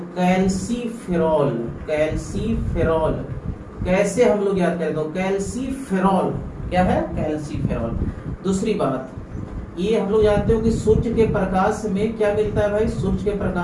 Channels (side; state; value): both; identical; correlation 1.00